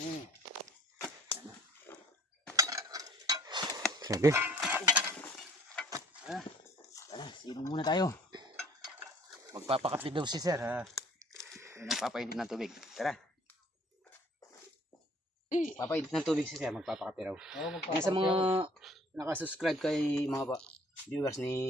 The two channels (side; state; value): both; normal; correlation 0.56